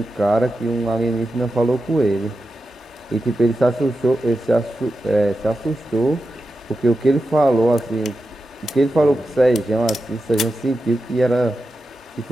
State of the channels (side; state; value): both; normal; correlation 0.90